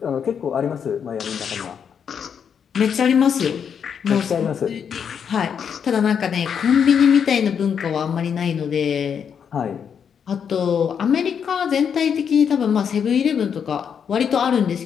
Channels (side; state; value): right; quieter; 7.4 dB